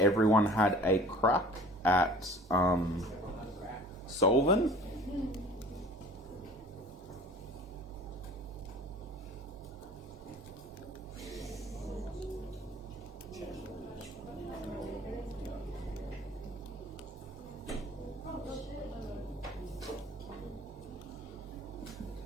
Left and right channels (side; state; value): both; normal; correlation 0.46